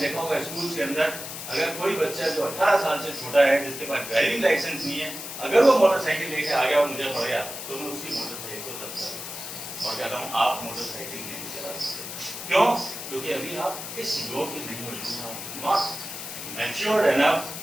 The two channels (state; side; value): noise; left; hiss, 8 dB below the sound